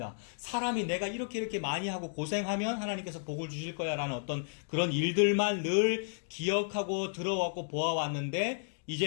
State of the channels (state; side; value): silent; right; digital silence